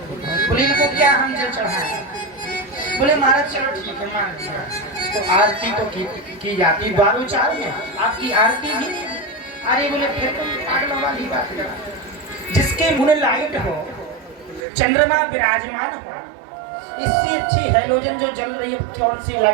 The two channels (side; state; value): left; drops out; at 14.7 s